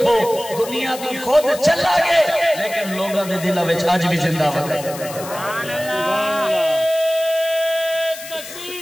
دنیا تو خود چلا گئے لیکن لوگوں دے دلوں وچ اج بھی زندہ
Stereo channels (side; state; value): left; noise; hiss, 13 dB below the sound